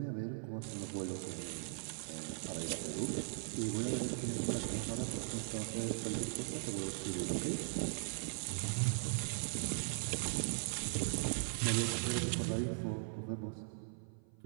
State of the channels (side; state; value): left; silent; 51 dB below the other